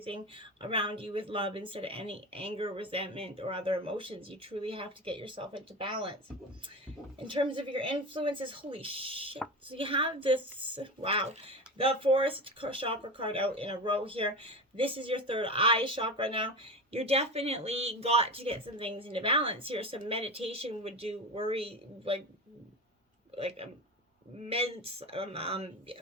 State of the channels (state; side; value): normal; both; correlation 0.25